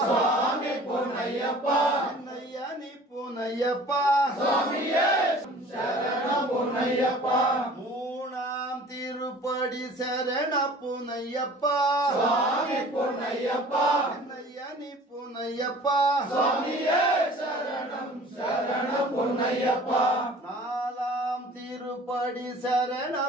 சுவாமி பூனையப்பா நையானி பூனையப்பா சுவாமியே சரணம் பூனையப்பா மூணாம் திருப்படி சரண பூனையப்பா சுவாமி பூனையப்பா நையானி பூனையப்பா சுவாமியே சரணம் சரணம் பூனையப்பா நாலாம் திரு திருப்படி சரண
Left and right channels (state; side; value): normal; both; correlation 0.47